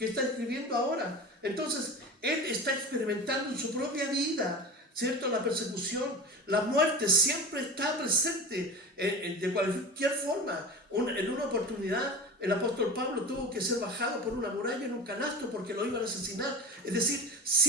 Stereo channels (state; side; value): normal; both; correlation 0.30